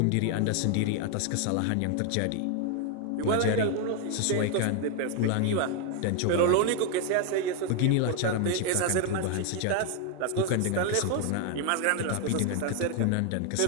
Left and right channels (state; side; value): different; both; correlation 0.00